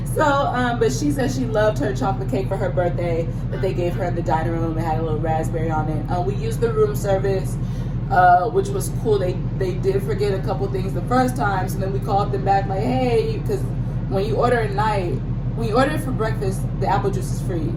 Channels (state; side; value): identical; both; correlation 1.00